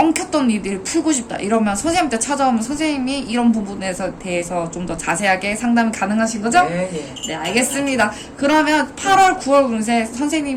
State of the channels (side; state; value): both; identical; correlation 1.00